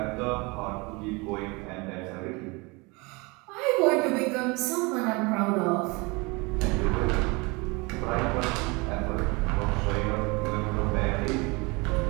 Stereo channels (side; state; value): left; quieter; 26.9 dB